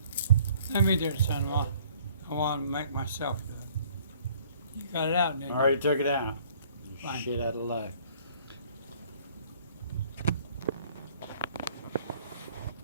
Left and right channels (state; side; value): inverted; both; correlation -0.57